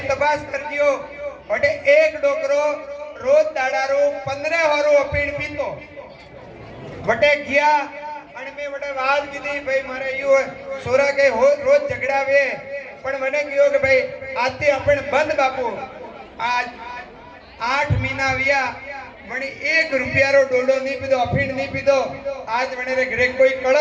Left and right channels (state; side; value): identical; both; correlation 1.00